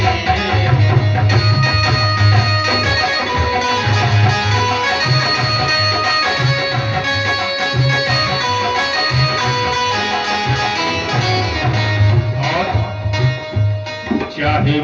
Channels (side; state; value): both; identical; correlation 1.00